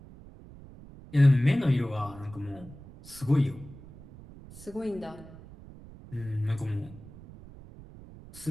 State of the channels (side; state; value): right; noise; rumble, 18 dB below the sound